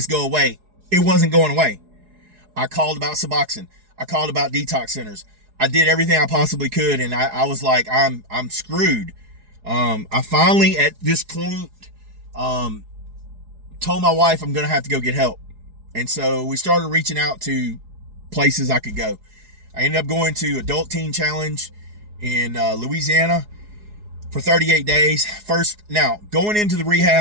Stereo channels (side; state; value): left; late; 4.8 ms